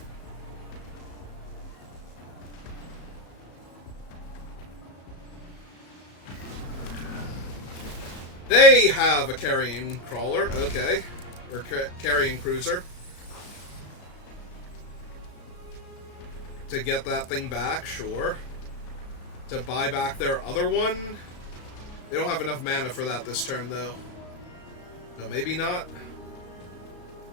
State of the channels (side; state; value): right; late; 34 ms